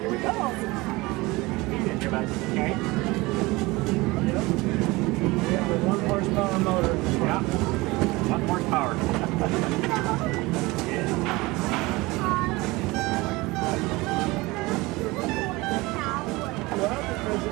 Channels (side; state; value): left; quieter; 22.0 dB